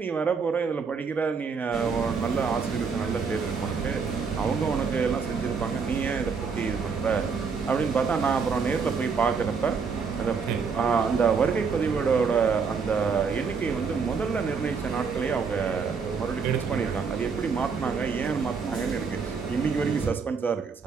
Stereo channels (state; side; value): quieter; left; 5.5 dB